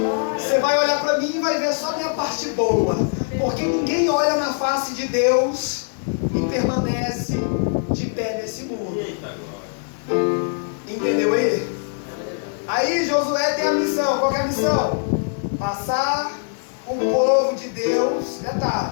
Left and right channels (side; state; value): right; silent; digital silence